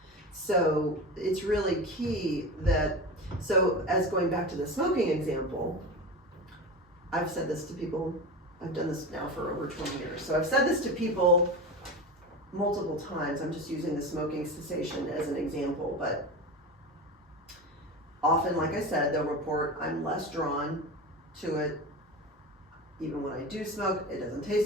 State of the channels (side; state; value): both; normal; correlation 0.26